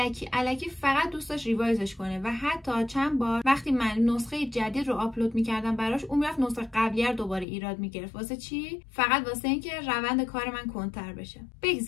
الکی فقط دوست داشت ریوایزش کنه و حتی چند بار وقتی من نسخه جدید رو آپلود میکردم براش، اون میرفت نسخه قبلی رو دوباره ایراد میگرفت. واسه چی؟ فقط واسه اینکه روند کار من کنتر بشه.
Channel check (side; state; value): right; drops out; at 7.5 s